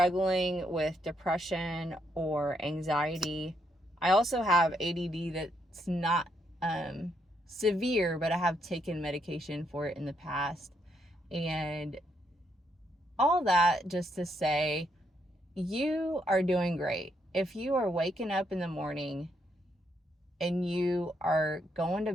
with depression or anxiety, I also have ADD that's not severe, but I have taken medication for it in the past. And all that just to say, you are doing great. If you are waking up in the morning and you are going to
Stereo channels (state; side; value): normal; both; correlation 0.76